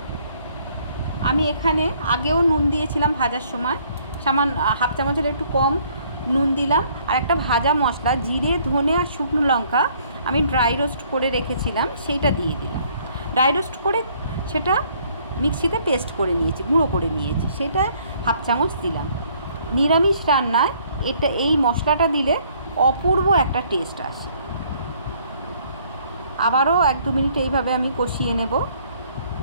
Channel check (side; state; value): both; inverted; correlation -0.63